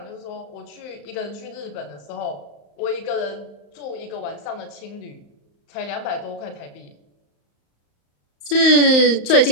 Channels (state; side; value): late; right; 35 ms